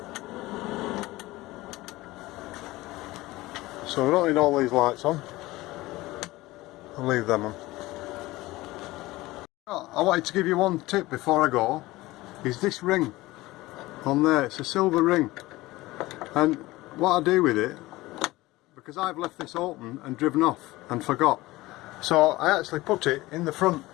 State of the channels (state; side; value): quieter; right; 19.1 dB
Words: So we don't need all these lights on. I'll leave them on. I wanted to give you one tip before I go, is this ring on there. It's a silver ring, and what I do with it, because I've left this open and driven off and forgot, so I actually put it in the front